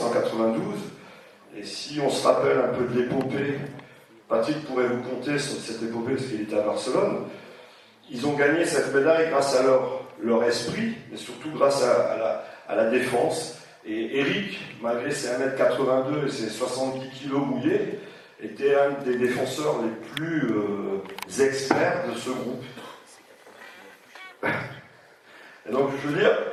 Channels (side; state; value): both; identical; correlation 1.00